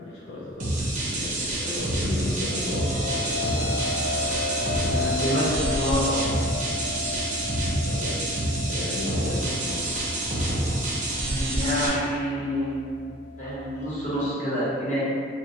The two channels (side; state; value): both; normal; correlation 0.40